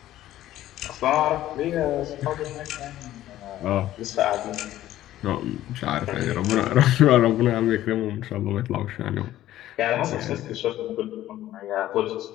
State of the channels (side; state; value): right; quieter; 13.8 dB